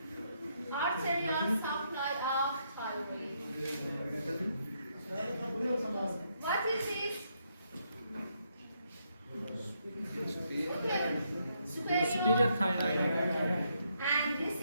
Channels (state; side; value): inverted; both; correlation -0.76